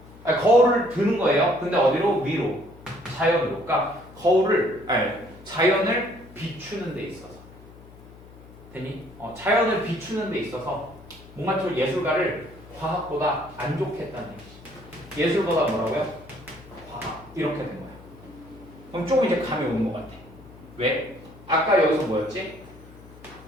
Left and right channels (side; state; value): left; noise; hum, 21 dB below the sound